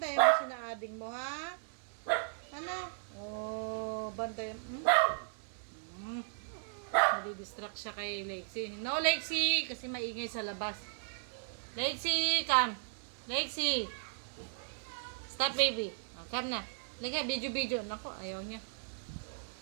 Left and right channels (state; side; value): silent; left; 54 dB below the other